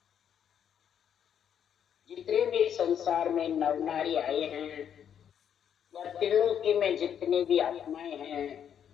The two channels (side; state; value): right; quieter; 8.8 dB